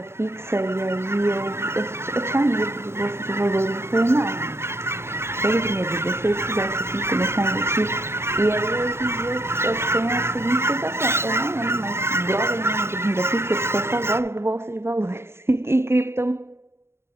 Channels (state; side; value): late; left; 0.12 ms